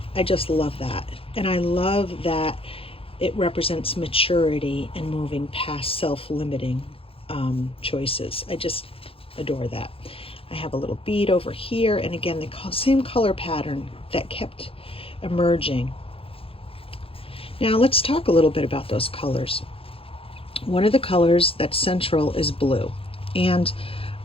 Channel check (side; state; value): right; late; 0.27 ms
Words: I just love that. And I love that it represents maturity and moving past self-limiting choices. I just adore that. I have a little bead over here, and again, the same color pattern that kept emerging. Now let's talk a little bit about those colors. One of the colors that's central is blue. And